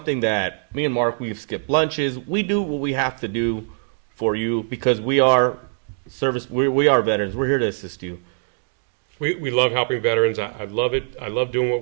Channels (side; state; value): left; silent; digital silence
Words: that me and Mark, we've skipped lunches. We do what we have to do for you, because we are we are veterans. We're here to assist you. We love helping veterans. I love it. I love doing what